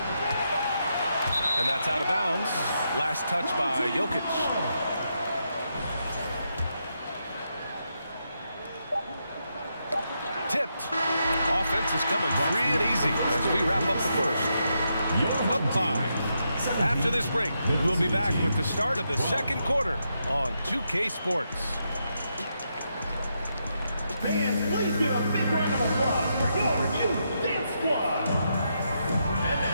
And that's out of bounds. Last touch by Jokic. Tipped. Offense is coming free and easy as we wrap up the first. Up 5. After this break, we'll be back with the start of the second quarter on 2K Sports. Fans, please give a big round of applause for your Dance Squad.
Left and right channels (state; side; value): inverted; both; correlation -0.82